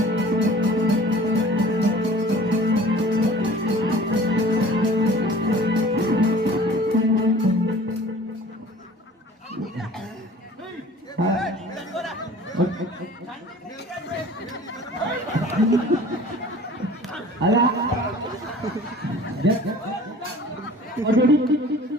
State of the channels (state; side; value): normal; both; correlation 0.46